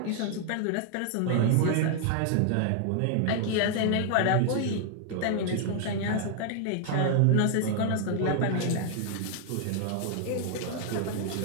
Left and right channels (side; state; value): both; different; correlation 0.00